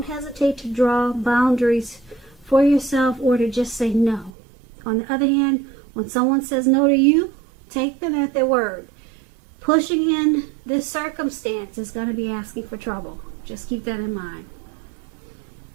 hesitate to draw boundaries for yourself or to just say no. On the other hand, when someone says no to you, take them at their word. Pushing in this circumstance is going to be asking for trouble. Just keep that in mind.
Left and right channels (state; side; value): drops out; left; at 4.3 s